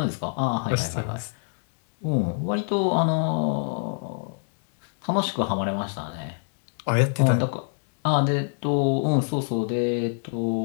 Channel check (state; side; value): silent; right; digital silence